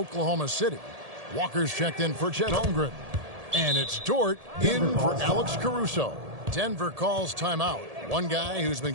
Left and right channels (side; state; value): left; late; 1.7 ms